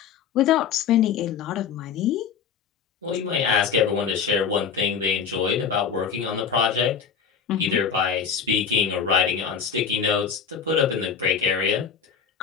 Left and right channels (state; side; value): quieter; right; 6.7 dB